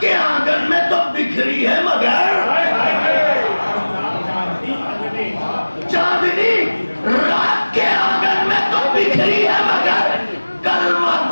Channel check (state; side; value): inverted; both; correlation -1.00